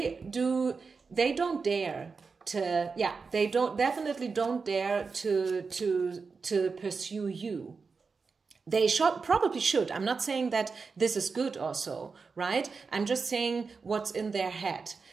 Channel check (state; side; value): quieter; left; 4.8 dB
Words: don't dare to, yeah, they definitely don't dare to pursue you. They probably should. I'm not saying that this is good also, right? I'm just saying what's in their head.